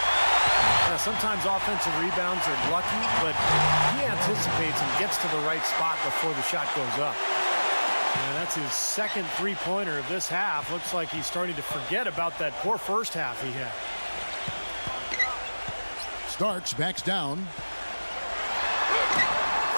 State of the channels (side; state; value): both; inverted; correlation -1.00